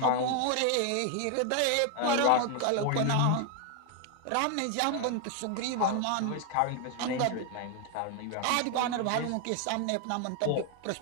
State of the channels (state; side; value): different; both; correlation 0.00